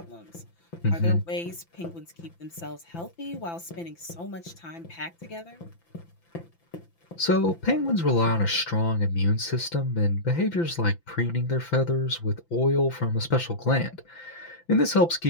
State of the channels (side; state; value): right; late; 5.9 ms